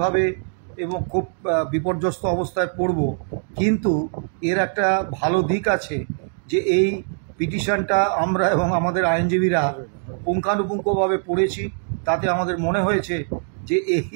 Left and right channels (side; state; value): left; silent; 64 dB below the other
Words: এবং খুব বিপর্যস্ত অবস্থায় পড়ব, কিন্তু এর একটা ভালো দিক আছে যে এই পিটিশনটা আমরা এবং আমাদের আইনজীবীরা পুঙ্খানুপুঙ্খভাবে পড়েছি। তাতে আমাদের মনে হয়েছে যে